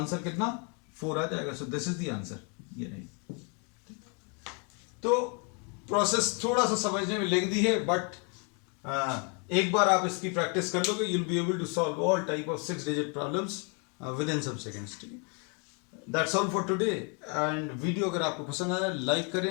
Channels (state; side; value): quieter; right; 36.1 dB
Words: कितना, 4 आ जाएगा। So this is the answer, ये नहीं। तो प्रोसेस थोड़ा सा समझने में लेंदी है, बट एक बार आप इसकी प्रैक्टिस कर लोगे, you'll be able to solve all type of 6 digit problems within some seconds। ठीक है, that's all for today। and video अगर आपको पसंद आया, लाइक